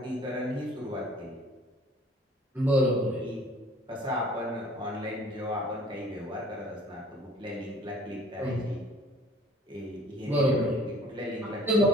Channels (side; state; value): both; normal; correlation 0.52